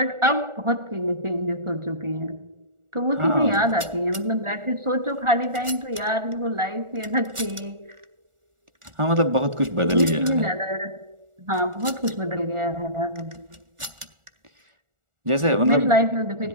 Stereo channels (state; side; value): late; left; 1.4 ms